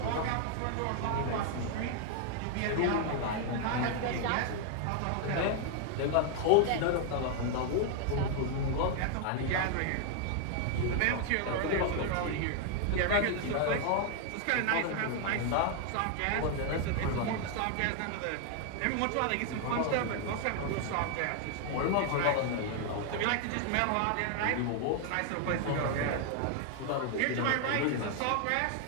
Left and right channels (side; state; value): both; different; correlation 0.00